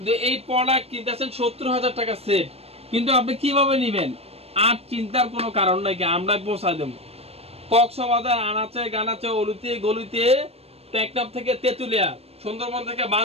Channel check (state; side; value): late; left; 0.29 ms